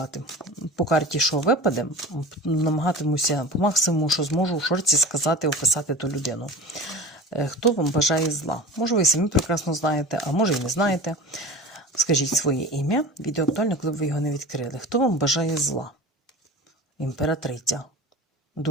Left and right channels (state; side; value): normal; both; correlation 0.35